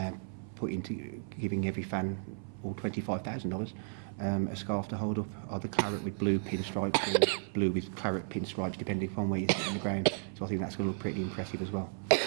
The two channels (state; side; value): silent; left; 55 dB below the other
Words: put into giving every fan all $25,000 a scarf to hold up, either claret with blue pinstripes or blue with claret pinstripes, depending upon where you sit in the ground. So I think that's going to look pretty impressive as well.